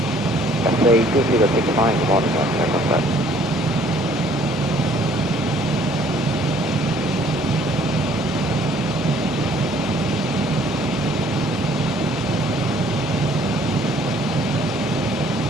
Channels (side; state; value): both; normal; correlation 0.59